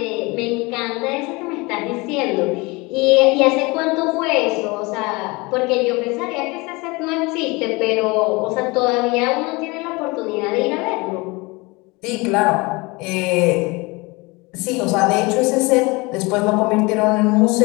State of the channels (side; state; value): right; quieter; 25.2 dB